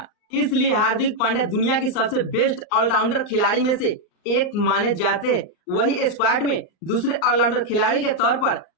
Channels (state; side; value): late; right; 39 ms